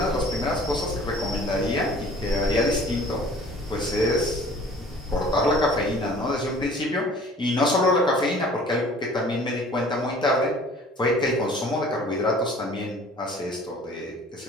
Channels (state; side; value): normal; both; correlation 0.49